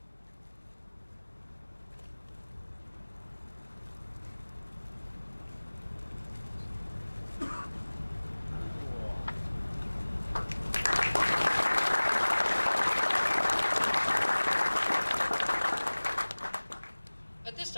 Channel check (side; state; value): both; inverted; correlation -1.00